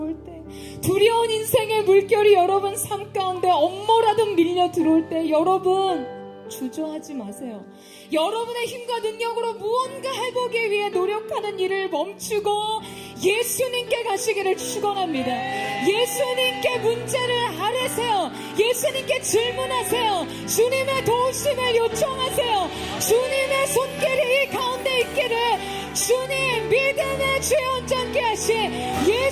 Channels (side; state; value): both; identical; correlation 1.00